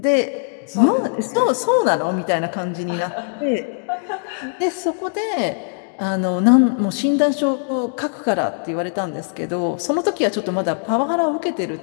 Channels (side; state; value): right; silent; 65 dB below the other